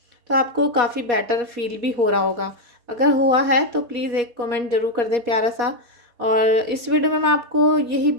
तो आपको काफ़ी बेटर फील भी हो रहा होगा। अगर हुआ है तो प्लीज़ एक कमेंट ज़रूर कर दें प्यारा सा। और इस वीडियो में मैं आपको यही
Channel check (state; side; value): late; left; 4.2 ms